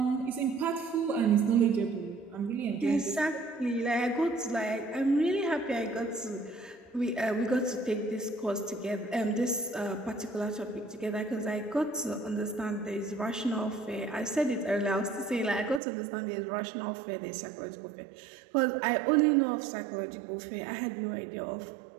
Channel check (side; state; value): left; drops out; at 15.8 s